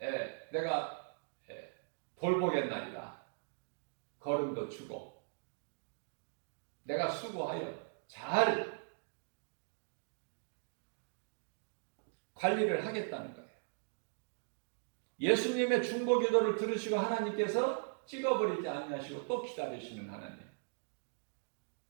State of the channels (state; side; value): silent; left; digital silence